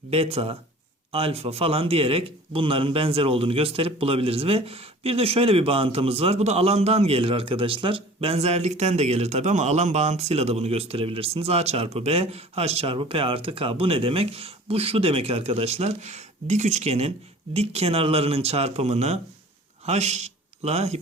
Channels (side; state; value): both; normal; correlation 0.45